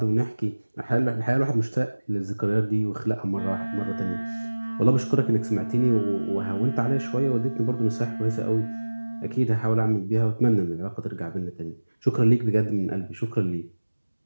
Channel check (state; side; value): inverted; both; correlation -1.00